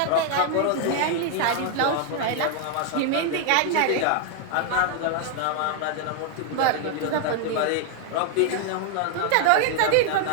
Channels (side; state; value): both; different; correlation 0.00